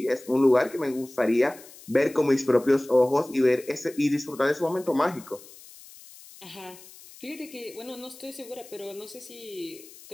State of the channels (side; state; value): left; noise; hiss, 20 dB below the sound